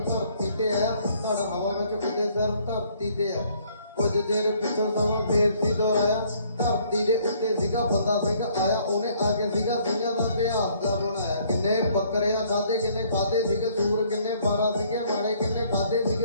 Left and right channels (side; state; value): both; inverted; correlation -0.63